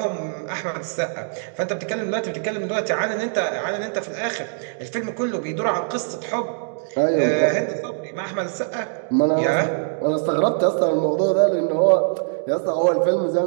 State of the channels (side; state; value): left; silent; digital silence